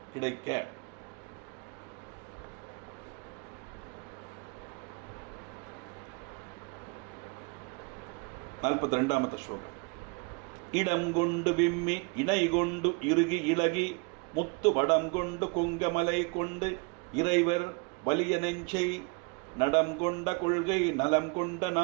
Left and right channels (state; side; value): quieter; left; 31.4 dB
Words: கிடைக்க. நாற்பத்தி ரெண்டாமத்த ஸ்லோகம். இடம் கொண்டு விம்மி இணை கொண்டு இறுகி இளகி முத்து வடம் கொண்டு கொங்கமலை கொண்டு இறைவர் வலிய நெஞ்சை நடம் கொண்ட கொள்கை நலம் கொண்ட